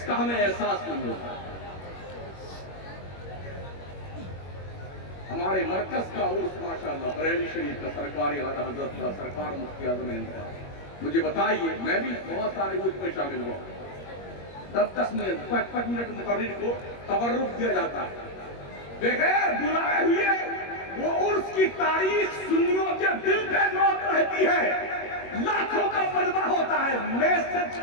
کا ہمیں احساس نہیں ہوتا. ہمارے مرکز کا عرس ماشاءاللہ بریلی شریف کا, سرکاری اعلیٰ حضرت کا, سرکار مفتی اعظم ہند کا. مجھے بتائیے, میں بھی بہت سارے عرس میں شامل ہوا, 10 منٹ 5 منٹ مقرر کو تبرک دیا جاتا ہے, بغیر بلائے ہوئے. وہ عرس کی تاریخ سنیوں کے دل پہ نوٹ رہتی ہے, لاکھوں کا مجمع ہوتا ہے. میسج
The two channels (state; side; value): late; right; 21 ms